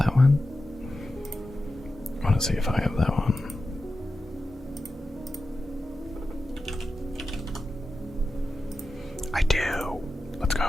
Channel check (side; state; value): both; normal; correlation 0.92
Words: one? I want to see if I have that one. I do. Let's go.